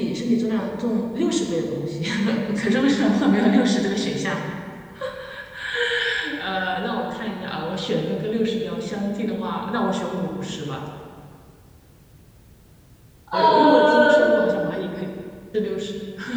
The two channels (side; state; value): both; identical; correlation 1.00